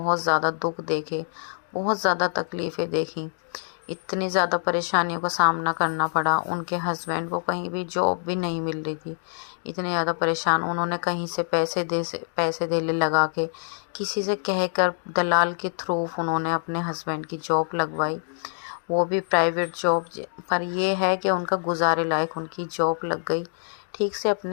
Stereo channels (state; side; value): silent; right; digital silence